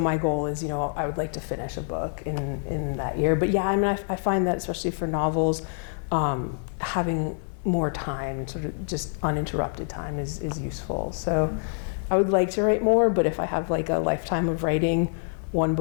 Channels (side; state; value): right; silent; 56 dB below the other